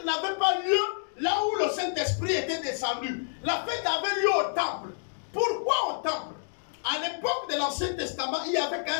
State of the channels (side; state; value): right; silent; digital silence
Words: n'avait pas lieu là où le Saint-Esprit était descendu. La fête avait lieu au temple. Pourquoi au temple? À l'époque de l'Ancien Testament, il n'y avait